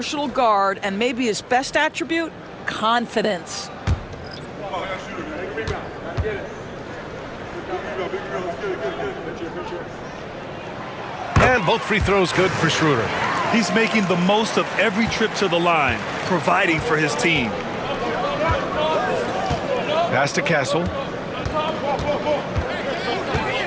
guard, and maybe his best attribute, confidence. And both free throws good for Schroeder. He's making the most of every trip to the line, providing for his team. Pass to Castle.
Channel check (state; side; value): identical; both; correlation 1.00